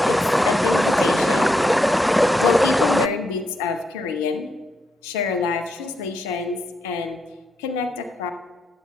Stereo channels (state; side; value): normal; both; correlation 0.81